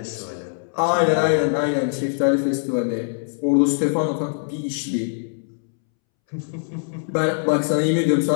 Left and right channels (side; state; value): right; silent; 64 dB below the other